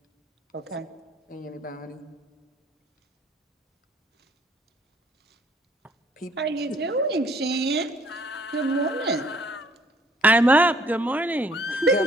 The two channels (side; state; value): both; normal; correlation 0.61